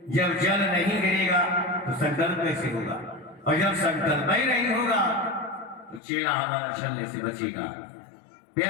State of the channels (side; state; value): right; drops out; at 6.0 s